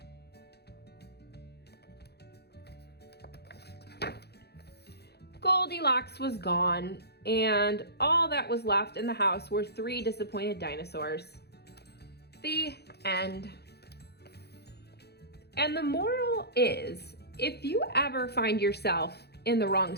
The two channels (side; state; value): right; late; 0.48 ms